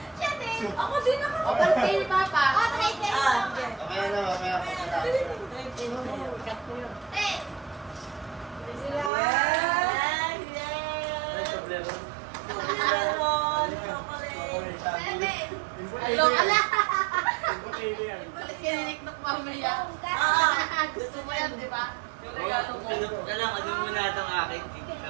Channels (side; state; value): left; drops out; at 9.1 s